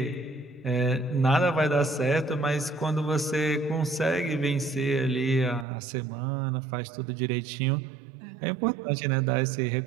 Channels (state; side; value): drops out; left; at 5.7 s